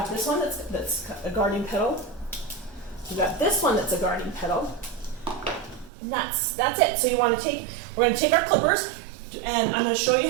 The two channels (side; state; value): left; drops out; at 5.9 s